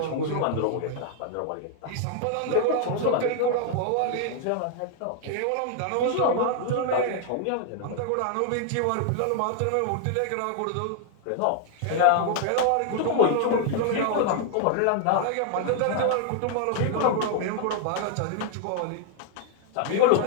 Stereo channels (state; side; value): different; both; correlation 0.00